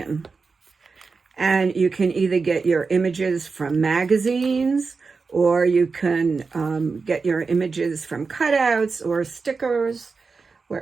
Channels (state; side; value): quieter; left; 4.6 dB